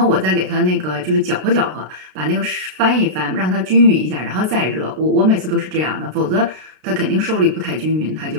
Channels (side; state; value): left; late; 32 ms